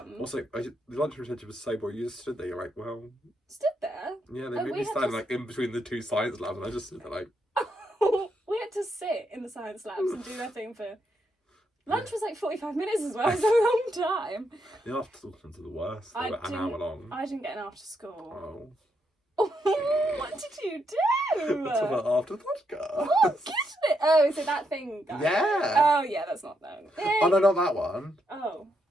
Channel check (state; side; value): normal; both; correlation 0.79